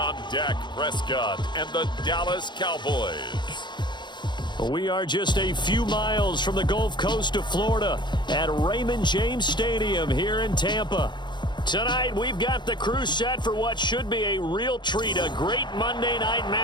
Dak Prescott and the Dallas Cowboys. We are just a few miles from the Gulf Coast of Florida at Raymond James Stadium here in Tampa. Tonight, we've got the crew set for what should be a real treat, a great Monday night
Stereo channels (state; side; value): late; right; 0.22 ms